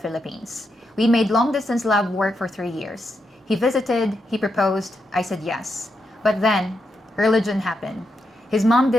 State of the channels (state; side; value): normal; both; correlation 0.83